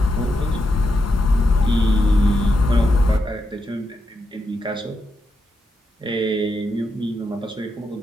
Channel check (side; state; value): both; normal; correlation 0.84